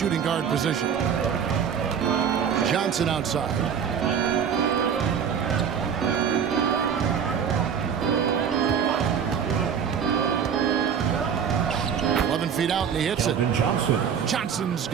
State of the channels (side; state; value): left; quieter; 7.5 dB